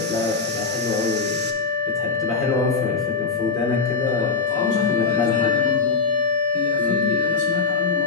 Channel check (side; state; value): right; quieter; 4.8 dB